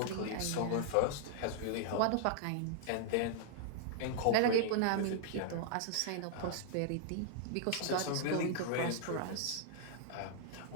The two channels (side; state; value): both; different; correlation -0.01